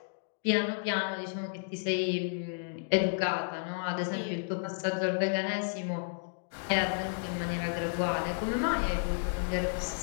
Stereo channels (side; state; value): right; silent; digital silence